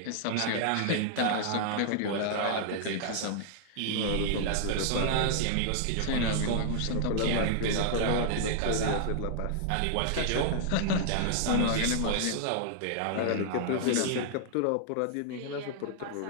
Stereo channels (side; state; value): both; different; correlation -0.01